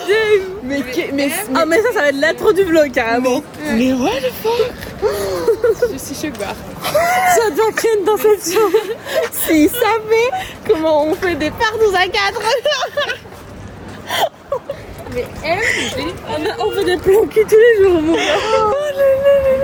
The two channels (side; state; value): both; identical; correlation 1.00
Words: Dave. Mais ça va être l'intro du vlog, carrément. Mais what the fuck? Je suis choquée. Ça doit créer une déception. S'il savait comment on fait des parts dans un cadre. Mais elle, on fait des plans cul tous les jours, mon gars.